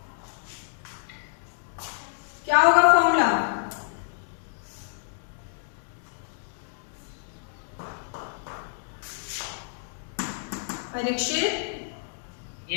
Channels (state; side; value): silent; right; digital silence